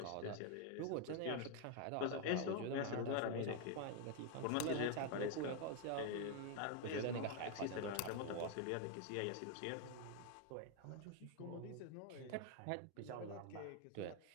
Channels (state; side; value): different; both; correlation 0.01